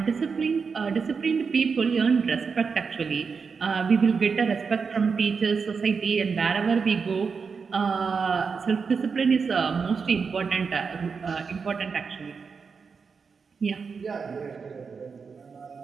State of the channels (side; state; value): left; quieter; 5.4 dB